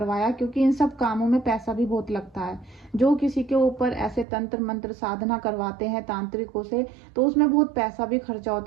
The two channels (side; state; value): left; drops out; at 4.2 s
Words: क्योंकि इन सब कामों में पैसा भी बहुत लगता है। जो किसी के ऊपर ऐसे तंत्र मंत्र साधना करवाते हैं तांत्रिकों से, तो उसमें बहुत पैसा भी खर्चा